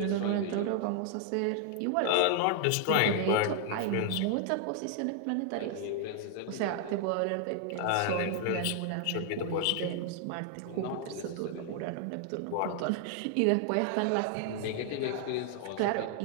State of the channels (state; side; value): different; both; correlation 0.00